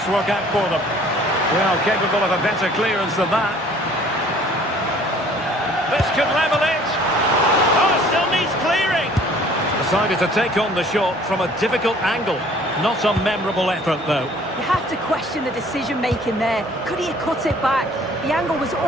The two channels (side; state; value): both; normal; correlation 0.54